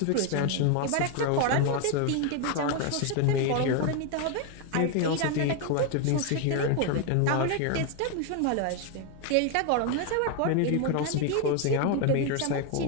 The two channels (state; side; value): different; both; correlation 0.01